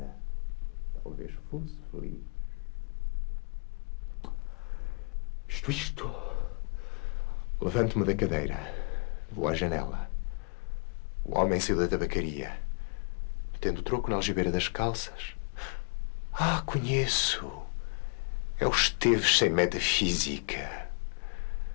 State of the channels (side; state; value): right; quieter; 35.2 dB